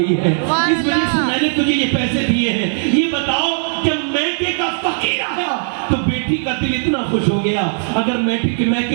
ہے, اس وجہ سے میں نے تجھے یہ پیسے دیے ہیں. یہ بتاؤ جب میکے کا فقیر آیا تو بیٹی کا دل اتنا خوش ہو گیا. اگر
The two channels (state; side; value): silent; left; digital silence